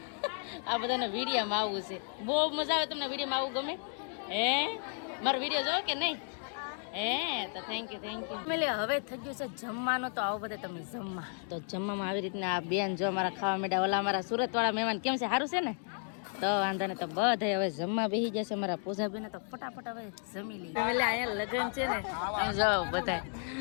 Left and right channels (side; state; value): right; silent; 56 dB below the other